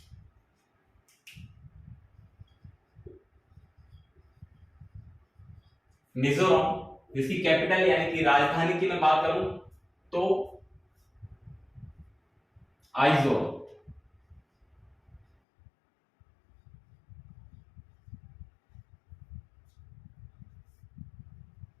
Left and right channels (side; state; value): right; drops out; at 15.2 s